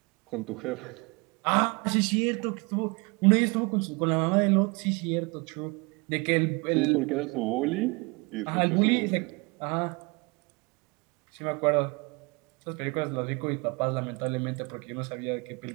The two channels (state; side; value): quieter; left; 28.2 dB